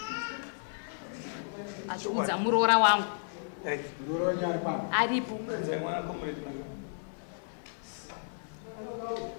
Achiudza muroora wangu. Muroora nyari pano. Aripo. Mwana komure.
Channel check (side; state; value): right; silent; digital silence